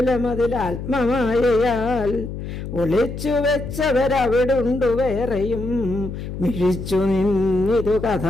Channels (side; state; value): left; noise; hum, 8 dB below the sound